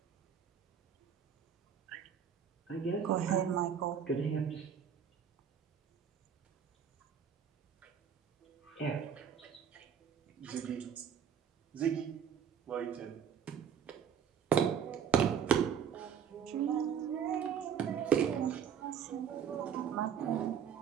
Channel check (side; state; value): left; quieter; 8.0 dB